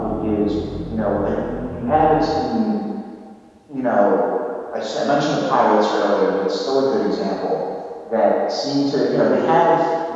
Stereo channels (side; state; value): both; identical; correlation 1.00